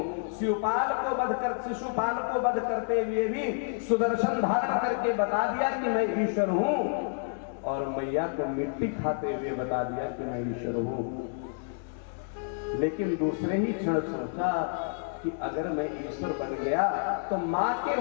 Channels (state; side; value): silent; right; digital silence